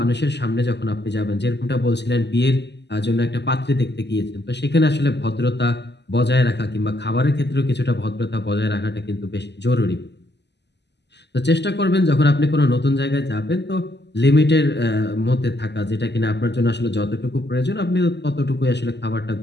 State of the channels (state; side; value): late; right; 0.50 ms